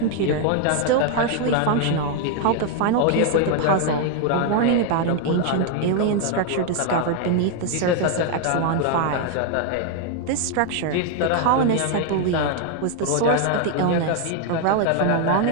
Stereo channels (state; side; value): different; both; correlation 0.00